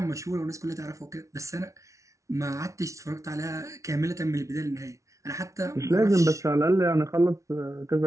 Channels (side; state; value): left; late; 0.15 ms